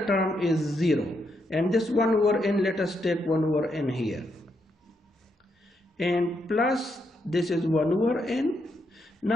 term is 0, and this 1 over n, let us take 1 over n here, and plus this is 1 over n.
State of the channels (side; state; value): both; normal; correlation 0.79